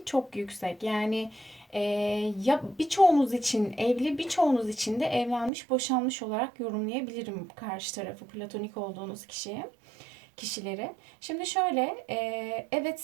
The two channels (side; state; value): left; drops out; at 5.5 s